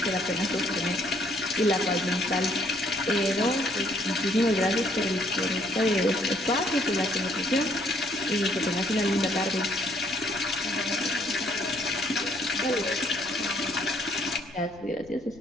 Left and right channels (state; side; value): noise; left; rumble, 23 dB below the sound